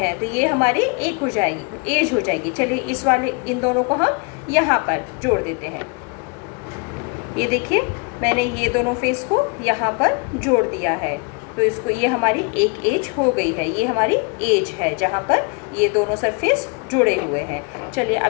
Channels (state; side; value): quieter; right; 32.7 dB